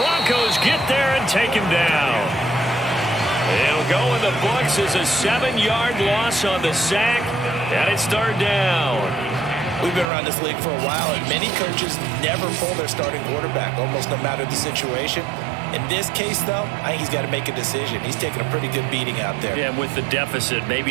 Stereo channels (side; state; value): left; drops out; at 10.1 s